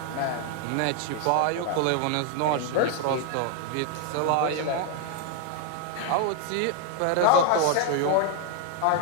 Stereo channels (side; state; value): both; different; correlation 0.00